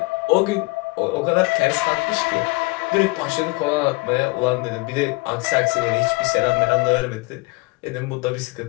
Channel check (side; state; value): right; quieter; 24.1 dB